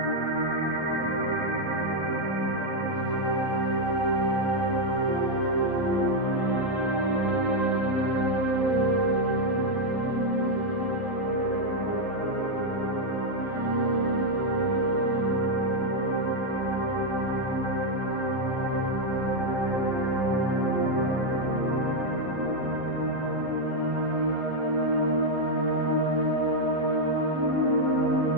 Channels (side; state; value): right; late; 11 ms